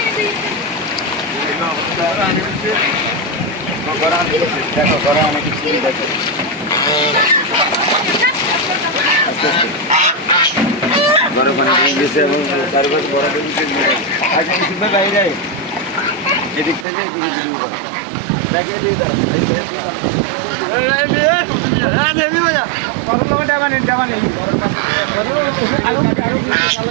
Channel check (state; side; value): drops out; left; at 16.9 s